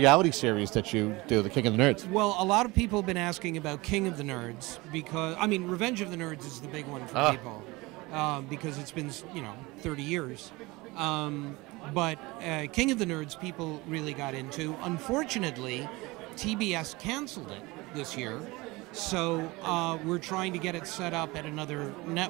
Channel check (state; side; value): quieter; left; 22.5 dB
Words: series that you do, The King of the Nerds? Well, a lot of people have been asking about King of the Nerds because, I mean, Revenge of the Nerds is the big one for people because it's been, 30 years. But King of the Nerds, people really got into. Unfortunately, TBS canceled it this year, so we're trying to get it set up at another